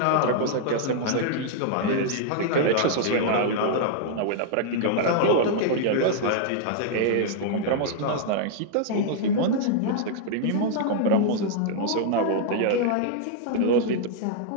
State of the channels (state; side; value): different; both; correlation -0.01